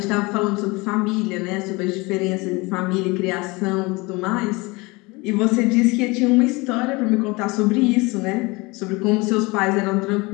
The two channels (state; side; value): quieter; right; 24.7 dB